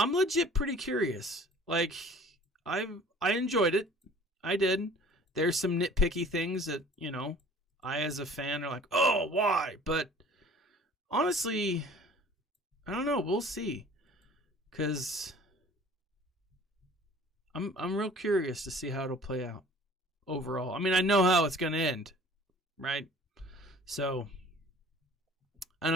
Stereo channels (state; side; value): normal; both; correlation 0.49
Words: legit pretty curious. Like, I enjoyed it. I did. There's some nitpicky things that, you know, I as a fan are like, oh, why? But honestly, I don't know. We'll see. Because I'm real curious to see how it'll play out overall. I mean, I know how it's going to end, right? So I